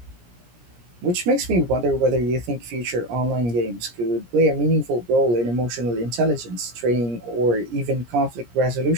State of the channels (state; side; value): late; left; 17 ms